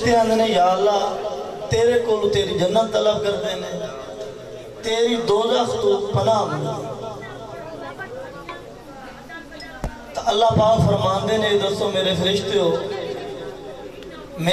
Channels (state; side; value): identical; both; correlation 1.00